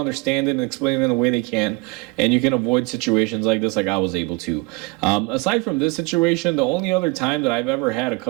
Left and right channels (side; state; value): left; quieter; 25.3 dB